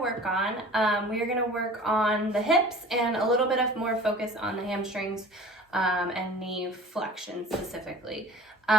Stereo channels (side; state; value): both; normal; correlation 0.43